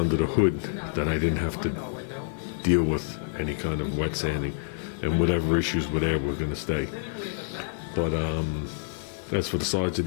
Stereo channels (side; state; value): right; silent; digital silence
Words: the hood that I didn't have to deal with any kind of wet sanding, and whatever issues were there were going to stay. But as for the sides of